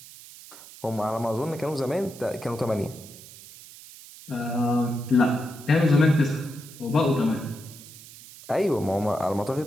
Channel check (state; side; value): noise; right; hiss, 18 dB below the sound